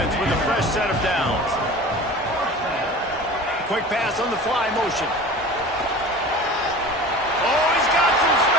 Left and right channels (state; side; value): normal; both; correlation 0.38